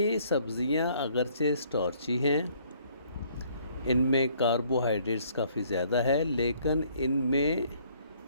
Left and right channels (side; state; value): both; inverted; correlation -0.63